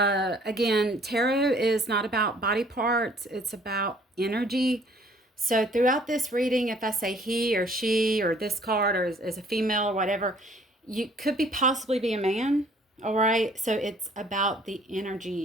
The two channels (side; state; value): both; normal; correlation 0.58